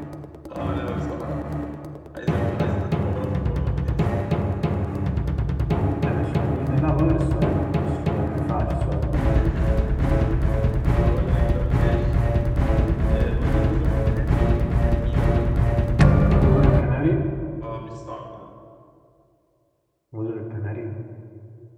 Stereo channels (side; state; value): both; identical; correlation 1.00